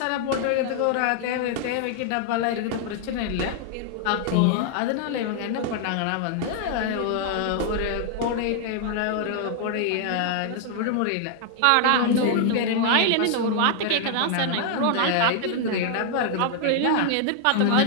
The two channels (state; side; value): different; both; correlation 0.00